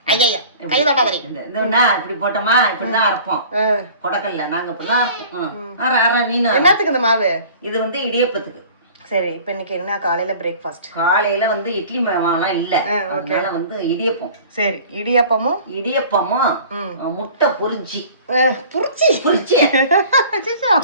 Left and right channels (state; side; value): inverted; both; correlation -0.45